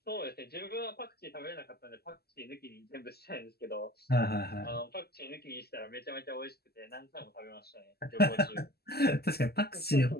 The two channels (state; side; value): late; right; 0.46 ms